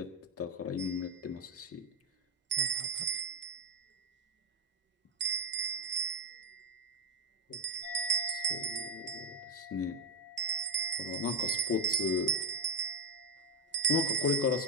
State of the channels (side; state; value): both; normal; correlation 0.05